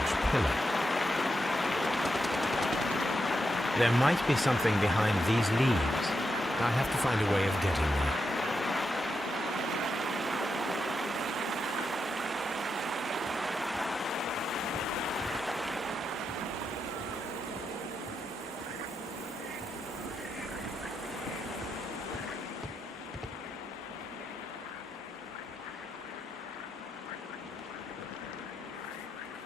pillar. There might be something behind these leaves. I have to find a way of getting there.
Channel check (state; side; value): normal; both; correlation 0.85